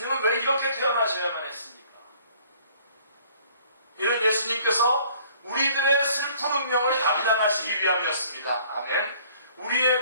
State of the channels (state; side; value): inverted; both; correlation -0.56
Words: 왜 이렇게 태어나셔야만 했습니까? 이는 예수님께서 우리들의 슬픈 운명을 감당하시기 위함이었습니다. 아멘.